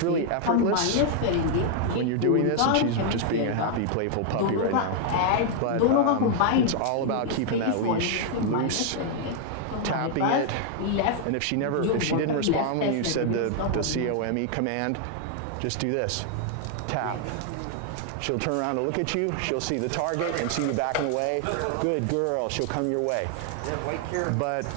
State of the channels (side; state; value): both; different; correlation 0.00